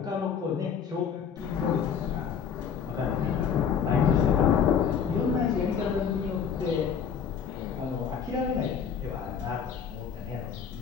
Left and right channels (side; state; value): right; quieter; 7.3 dB